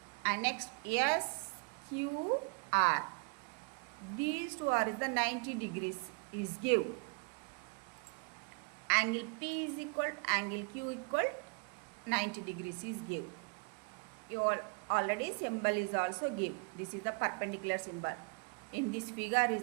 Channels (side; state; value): left; quieter; 34.1 dB